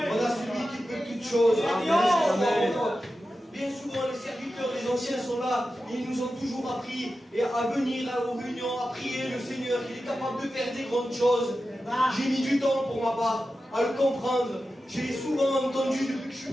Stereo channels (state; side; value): normal; both; correlation 0.92